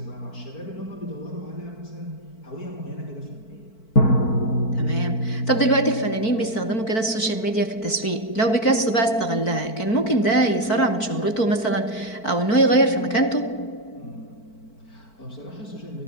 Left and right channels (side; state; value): right; late; 4.5 ms